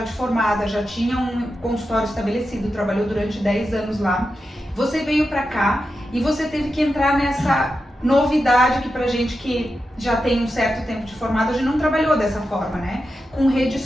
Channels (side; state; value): both; normal; correlation 0.89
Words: formada, já tinha um consultório estabelecido, trabalhou durante 10 anos lá, você veio para cá e você teve que entrar nessa novidade que pra gente que já tem um certo tempo de formado, a gente não trabalhou dessa forma, né? Com rede